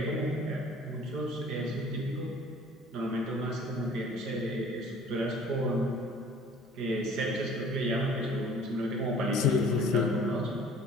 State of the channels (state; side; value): normal; both; correlation 0.50